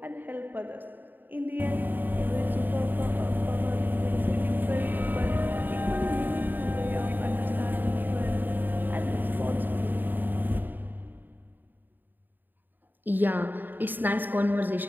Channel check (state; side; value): late; left; 0.090 ms